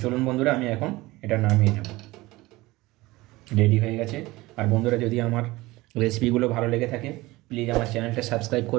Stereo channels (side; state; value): left; quieter; 20.0 dB